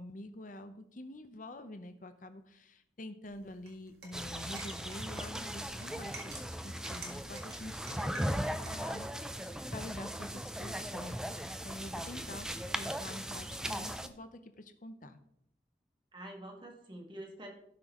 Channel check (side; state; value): both; normal; correlation 0.77